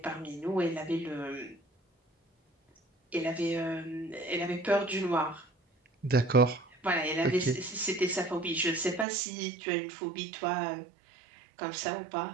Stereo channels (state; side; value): drops out; left; at 9.1 s